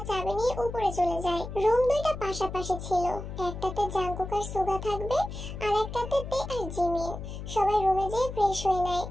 চাবি নিয়ে উপরে চলে যায়। রুম 2টা পাশাপাশি ছিল। একটাতে জাঙ্কুক আর সুগা থাকবে, আর একটাতে তে আর জিমিন। সবাই রুমে যেয়ে ফ্রেশ হয়ে নেয়।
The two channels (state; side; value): noise; left; hum, 9 dB below the sound